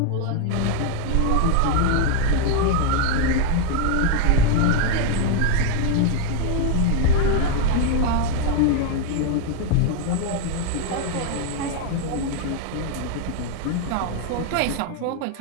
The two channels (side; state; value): both; different; correlation 0.01